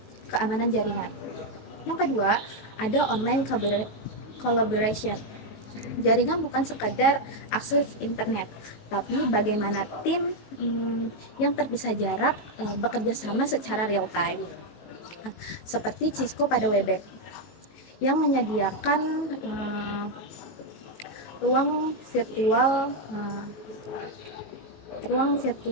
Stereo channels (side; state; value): right; late; 19 ms